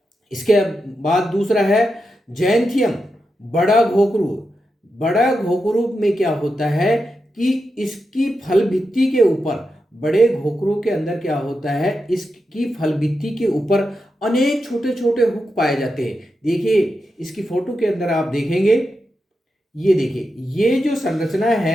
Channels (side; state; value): both; normal; correlation 0.88